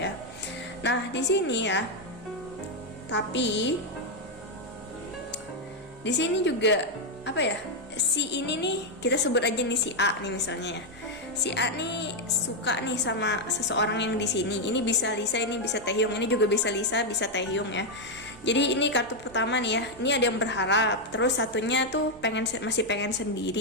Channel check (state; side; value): noise; right; hum, 28 dB below the sound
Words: Nah, di sini ya. Tapi di sini juga apa ya? Si ini nih, kita sebut aja nih si A nih misalnya ya. Si A nih suka nih sama seseorang yang di sini. Ini bisa Lisa, ini bisa Taehyung, ini juga bisa Lisa, bisa Taehyung ya. Jadi ini kartu pertama nih ya. Ini ada yang berharap, terus satunya tuh masih pengen